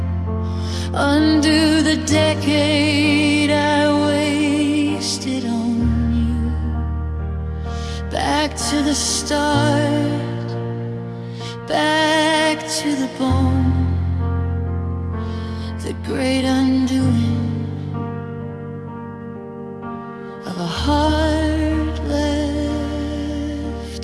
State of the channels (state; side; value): identical; both; correlation 1.00